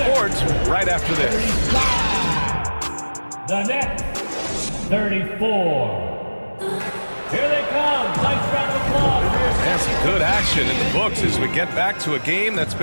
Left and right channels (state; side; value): inverted; both; correlation -1.00